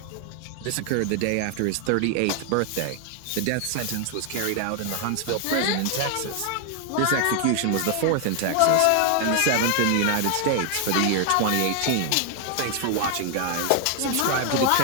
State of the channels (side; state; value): both; different; correlation 0.00